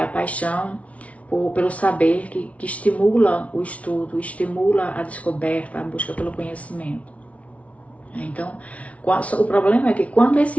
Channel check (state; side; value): late; right; 0.065 ms